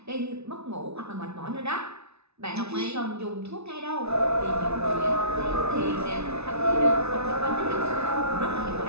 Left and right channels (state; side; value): late; left; 0.80 ms